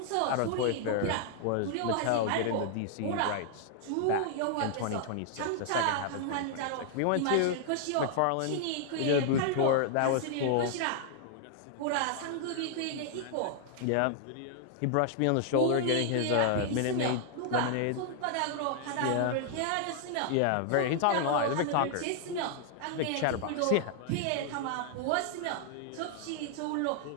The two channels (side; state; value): both; different; correlation 0.00